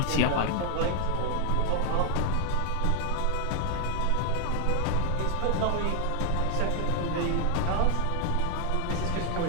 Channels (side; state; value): both; different; correlation 0.01